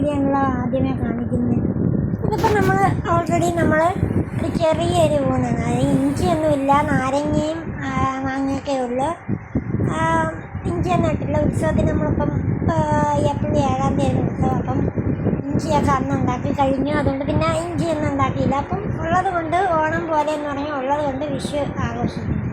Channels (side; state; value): both; identical; correlation 1.00